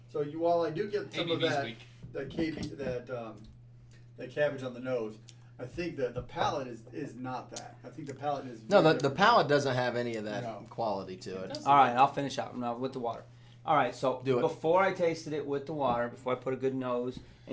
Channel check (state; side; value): identical; both; correlation 1.00